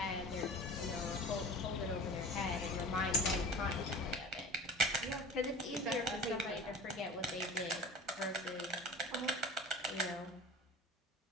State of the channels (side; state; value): both; normal; correlation 0.38